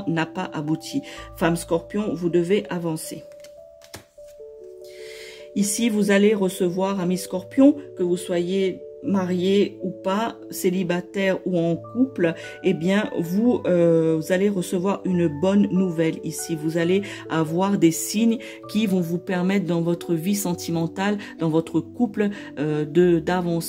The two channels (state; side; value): identical; both; correlation 1.00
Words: n'a pas abouti. Femme Scorpion, vous devez avancer. Ici, vous allez recevoir, amis Scorpions, que vous soyez marié ou pas, célibataire ou en couple, eh bien, vous allez recevoir une bonne nouvelle ici. Vous allez avoir des signes qui vont vous permettre dans votre vie sentimentale, dans votre couple,